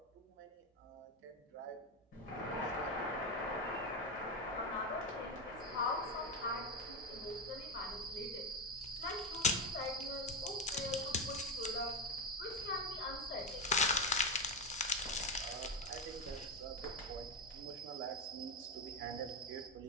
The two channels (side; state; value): both; normal; correlation 0.10